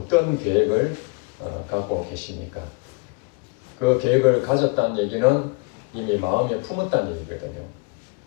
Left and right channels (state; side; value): quieter; right; 30.0 dB